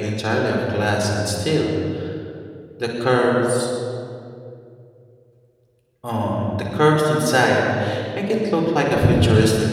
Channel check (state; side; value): identical; both; correlation 1.00